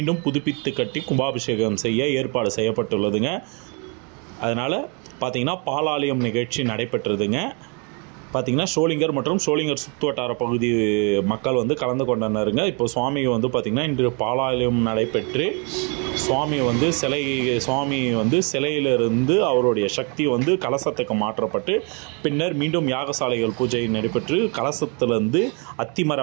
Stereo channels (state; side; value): quieter; left; 34.4 dB